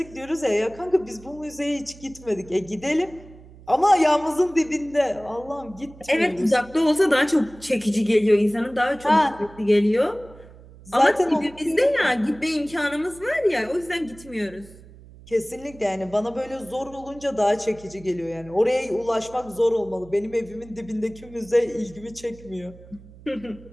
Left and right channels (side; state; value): right; noise; hum, 21 dB below the sound